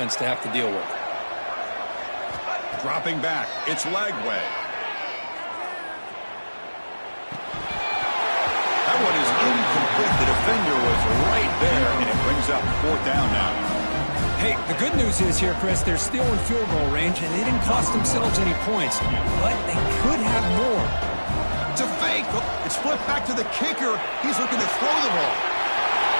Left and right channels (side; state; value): both; inverted; correlation -1.00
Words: to have to deal with. Dropping back, it's Lagway. That one is incomplete. The defender was right there, and it brings up 4th down now. Hey, the good news is here, Chris, they're still in field goal range, and they didn't cost themselves any points, but they could have more. It's a fake. It's flipped back to the kicker. He's looking to throw the ball.